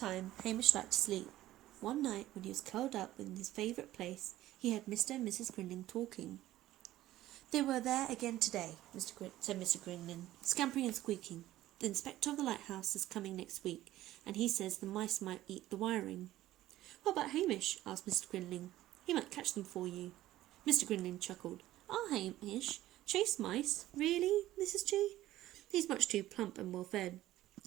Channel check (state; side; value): quieter; left; 14.8 dB